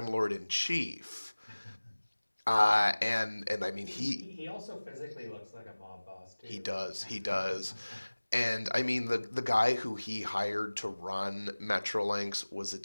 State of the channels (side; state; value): both; inverted; correlation -1.00